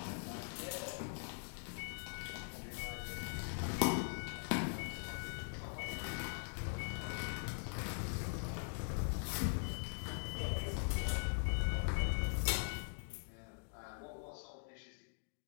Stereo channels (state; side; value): silent; right; digital silence